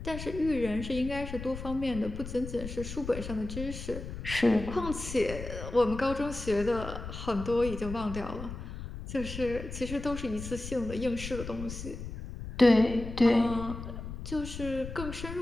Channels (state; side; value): noise; left; rumble, 9 dB below the sound